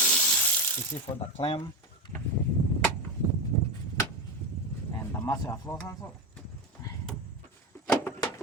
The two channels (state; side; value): normal; both; correlation 0.16